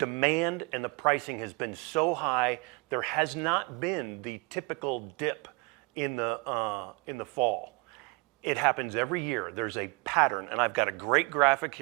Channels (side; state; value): left; quieter; 29.2 dB